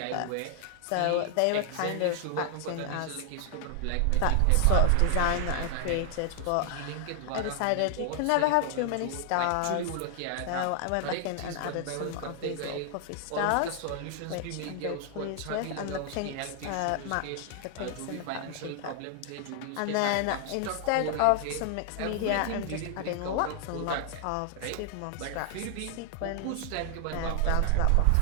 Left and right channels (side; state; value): both; different; correlation 0.00